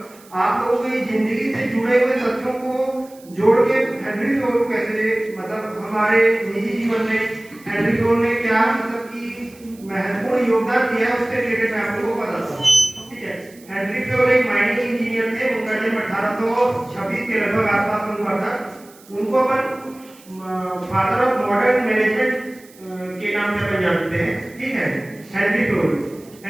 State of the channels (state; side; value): noise; right; hiss, 25 dB below the sound